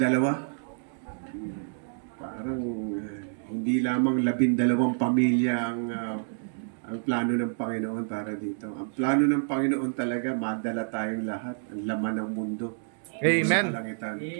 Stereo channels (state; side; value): silent; left; digital silence